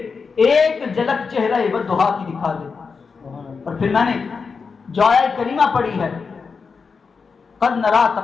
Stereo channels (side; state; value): right; quieter; 5.2 dB